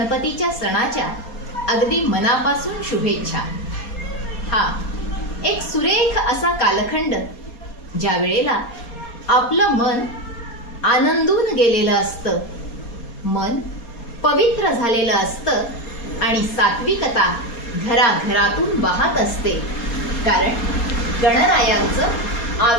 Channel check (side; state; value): right; late; 4.2 ms